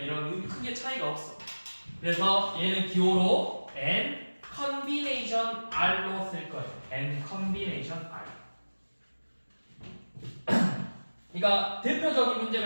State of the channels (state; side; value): inverted; both; correlation -1.00